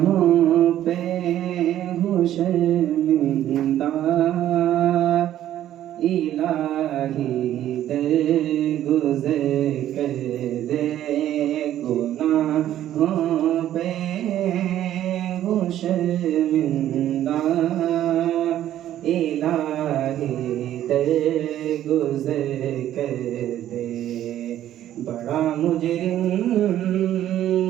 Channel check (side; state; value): left; quieter; 12.1 dB